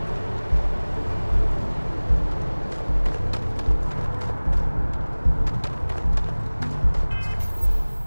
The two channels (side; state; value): both; inverted; correlation -1.00